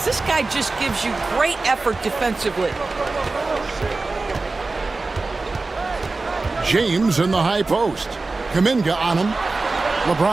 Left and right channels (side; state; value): left; quieter; 3.6 dB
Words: This guy just gives you great effort defensively. James in the high post. Kuminga on him.